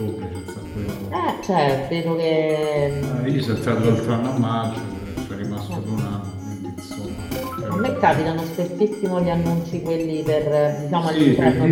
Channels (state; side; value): identical; both; correlation 1.00